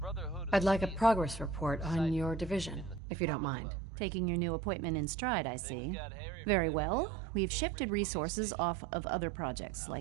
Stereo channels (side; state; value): left; drops out; at 3.0 s